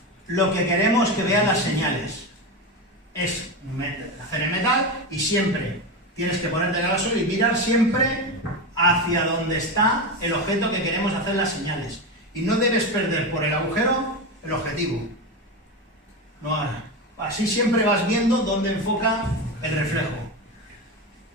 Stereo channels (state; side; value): normal; both; correlation 0.18